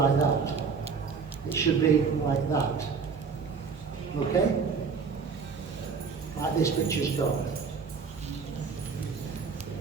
that. It should be like that. Okay? Like this picture's got.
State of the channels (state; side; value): quieter; left; 5.5 dB